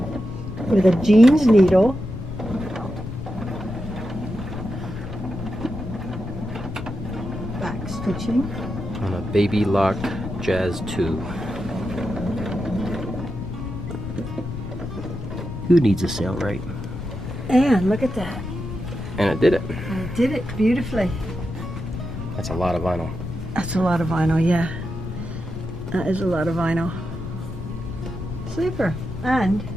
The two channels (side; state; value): left; noise; rumble, 8 dB below the sound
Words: With a jeans needle. Back stitching. On a Baby Lock Jazz 2. Who needs a Sailrite? And look at that. And it did it. And it did it beautifully. That's a lot of vinyl. That's a lot of vinyl, yeah. That is a lot of vinyl. Super. And